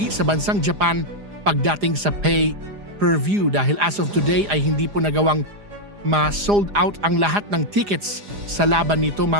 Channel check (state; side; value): late; left; 4.9 ms